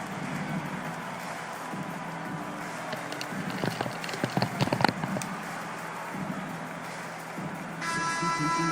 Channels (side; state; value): both; identical; correlation 1.00